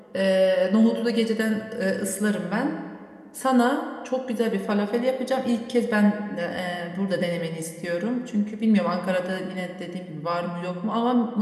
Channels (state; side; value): identical; both; correlation 1.00